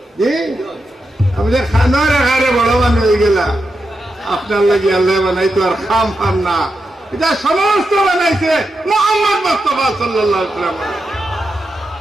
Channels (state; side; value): normal; both; correlation 0.87